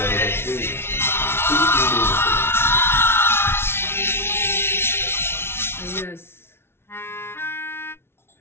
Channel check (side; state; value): right; late; 0.12 ms